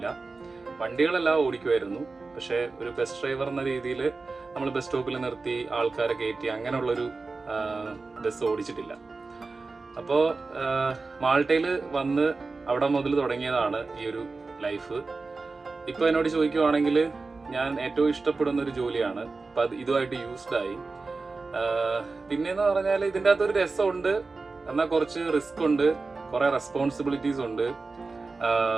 വണ്ടികളെല്ലാം ഓടിക്കുമായിരുന്നു, പക്ഷേ ഒരു ബസ് ഡ്രൈവർ എന്ന രീതിയിൽ നമ്മൾ ബസ് സ്റ്റോപ്പിൽ നിർത്തി ആൾക്കാരെ കയറ്റി അങ്ങനെയുള്ളൊരു ബസ് ഓടിച്ചിട്ടില്ല. അപ്പോൾ മാൾട്ടയിൽ വന്ന് അവിടെ മുതൽ തുടങ്ങിയതാണ് ഈ ഒരു ലൈഫ്. ഇപ്പോൾ എന്നോട് ചോദിക്കുവാണെങ്കിൽ ഞാൻ ഏറ്റവും ഇഷ്ടപ്പെടുന്ന ഒരു ജോലിയാണ്. അപ്പം അത് ഇതുമായിട്ട് യൂസ്ഡായി. പിന്നെയെന്ന് പറഞ്ഞാൽ ഇതിൻ്റെ അകത്തൊരു രസമുണ്ട്, എന്നാൽ കുറച്ച് റിസ്ക് ഉണ്ട്, കുറേ റെസ്പോൺസിബിലിറ്റീസ് ഉണ്ട്.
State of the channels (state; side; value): quieter; left; 3.9 dB